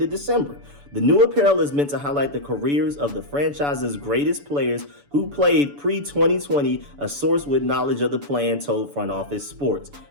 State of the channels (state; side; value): late; left; 7.0 ms